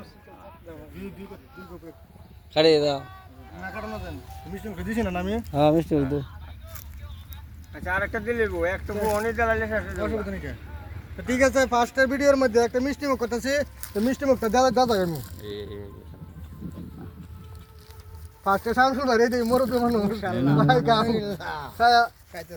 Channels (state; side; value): identical; both; correlation 1.00